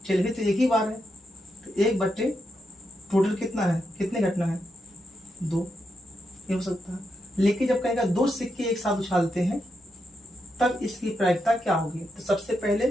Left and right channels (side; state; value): both; normal; correlation 0.84